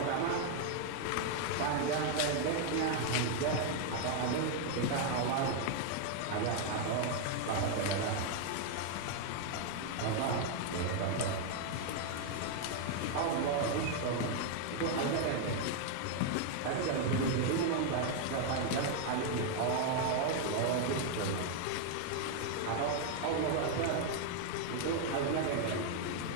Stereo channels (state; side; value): different; both; correlation 0.00